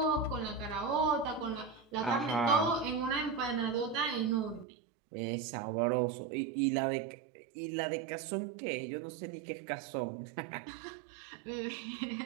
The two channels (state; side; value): drops out; left; at 4.7 s